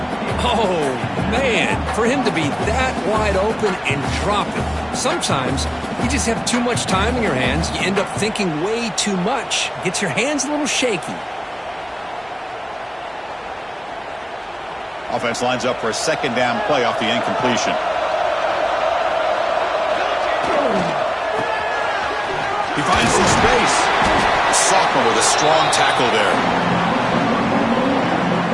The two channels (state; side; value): identical; both; correlation 1.00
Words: Oh, man, for him to be that wide open and drop it. Sometimes you just have too much time in your hands. You end up thinking way too much. Gets your hands a little shaky. Offense lines up for a second down play off the incompletion. He finds some space. The sophomore with a strong tackle there.